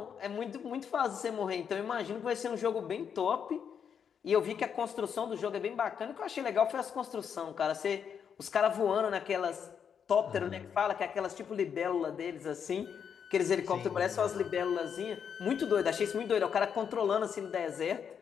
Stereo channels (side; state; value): right; quieter; 7.5 dB